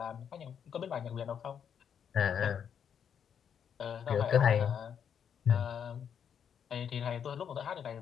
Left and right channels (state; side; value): quieter; right; 8.0 dB